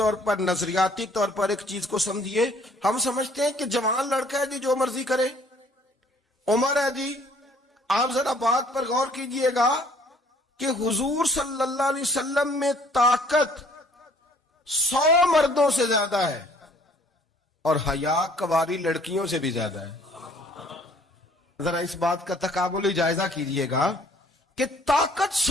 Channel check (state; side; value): normal; both; correlation 0.59